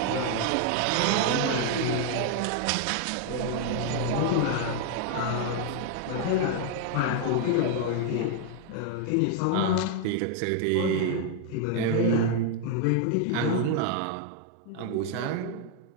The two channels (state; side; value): different; both; correlation 0.00